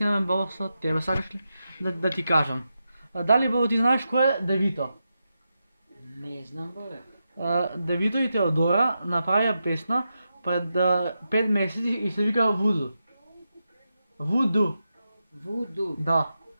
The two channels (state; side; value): inverted; both; correlation -0.88